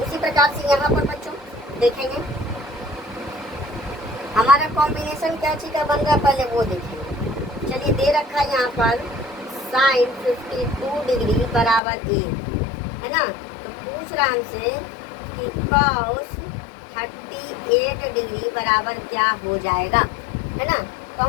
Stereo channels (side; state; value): right; drops out; at 11.8 s